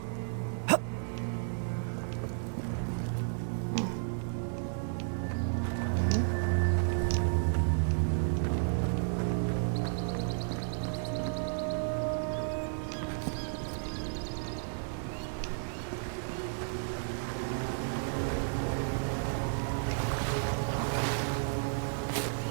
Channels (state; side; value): silent; left; 56 dB below the other